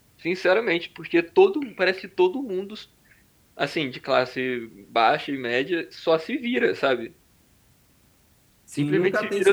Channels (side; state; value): both; identical; correlation 1.00